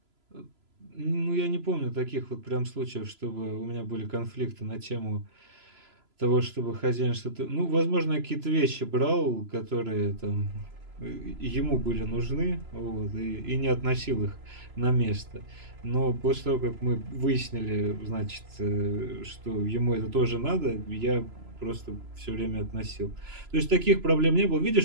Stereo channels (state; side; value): late; left; 3.0 ms